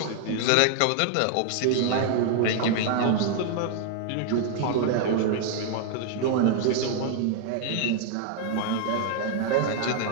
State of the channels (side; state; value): both; different; correlation 0.00